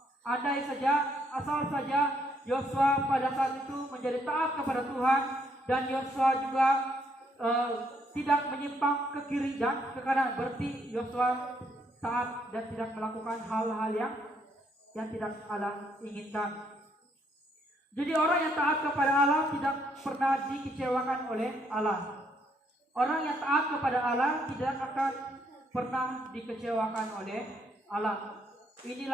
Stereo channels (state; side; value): normal; both; correlation 0.71